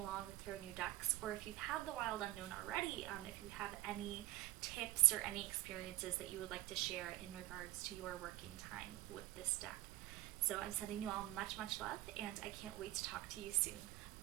with your new decks, or if you've had the Wild Unknown already, if you have any tips or any experiences that you would like to share in regards to your working time with this deck. So I'm sending you all much, much love, and I can't wait to talk to you soon.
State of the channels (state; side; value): quieter; left; 16.6 dB